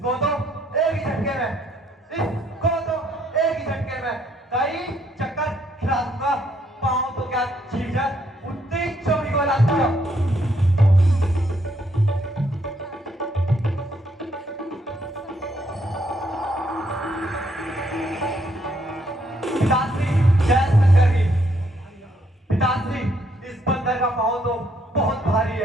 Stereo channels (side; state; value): both; normal; correlation 0.71